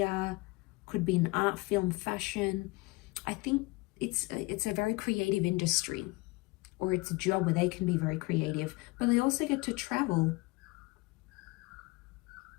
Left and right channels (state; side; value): quieter; right; 24.4 dB